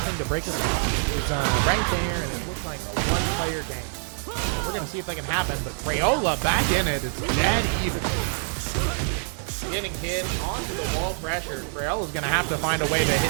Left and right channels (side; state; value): left; silent; 57 dB below the other